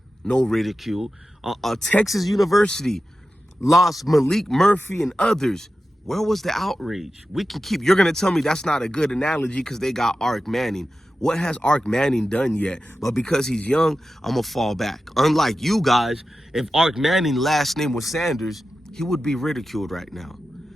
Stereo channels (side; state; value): both; normal; correlation 0.93